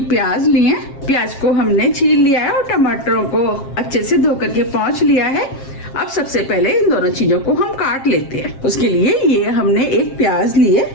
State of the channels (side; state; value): right; late; 7.5 ms